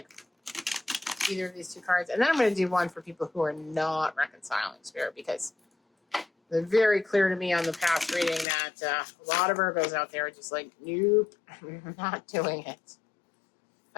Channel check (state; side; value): drops out; right; at 8.5 s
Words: either of these two cards. And then I'm going to do one for people who are not reconciling, Spirit, because they're very clear to me on the past reading that a lot of Virgos out there are just like, nope, I'm not doing it.